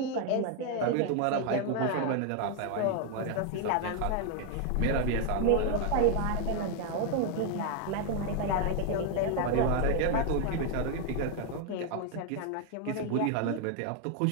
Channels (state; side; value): different; both; correlation 0.01